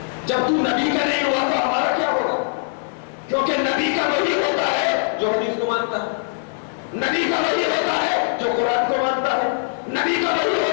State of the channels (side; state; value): right; silent; digital silence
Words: جب تو نبی کا نہیں ہوا تو ہمارا کیا ہوگا؟ کیونکہ نبی کا وہی ہوتا ہے جو حدیث کو مانتا ہے، نبی کا وہی ہوتا ہے جو قرآن کو مانتا ہے، نبی کا وہی